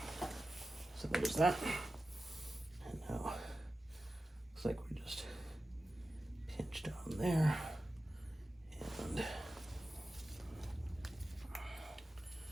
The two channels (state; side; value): normal; both; correlation 0.94